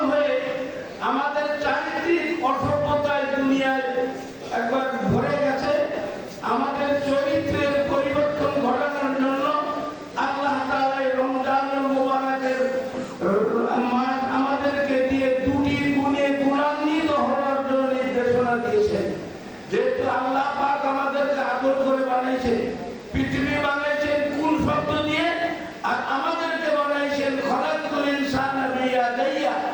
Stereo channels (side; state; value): both; identical; correlation 1.00